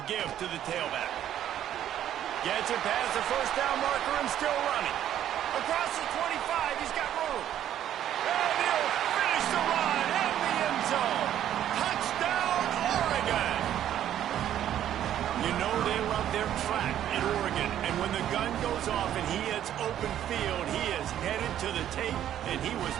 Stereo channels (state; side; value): quieter; left; 11.1 dB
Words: give to the tailback. Gets it past the first down marker and still running. Across the 25, he's got room. And he'll finish the run in the end zone. Touchdown, Oregon! You know they love their track in Oregon. And when the gun goes off and he hits open field, he is headed to the tape, and he was